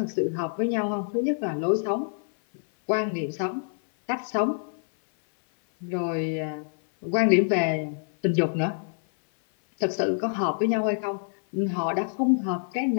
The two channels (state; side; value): silent; right; 58 dB below the other